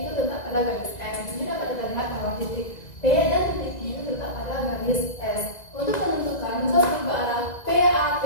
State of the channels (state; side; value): late; right; 1.9 ms